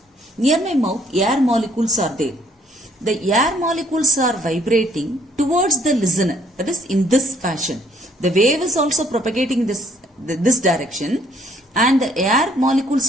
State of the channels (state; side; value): normal; both; correlation 0.65